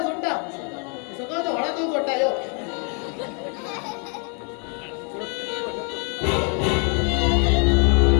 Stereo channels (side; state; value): right; quieter; 39.4 dB